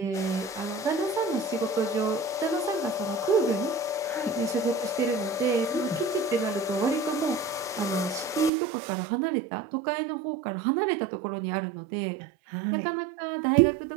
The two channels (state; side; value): drops out; left; at 8.5 s